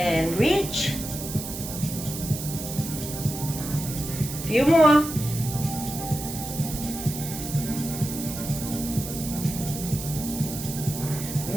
reach. Few more.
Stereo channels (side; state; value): right; noise; hiss, 8 dB below the sound